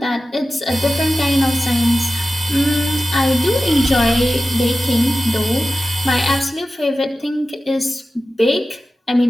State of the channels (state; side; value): normal; both; correlation 0.94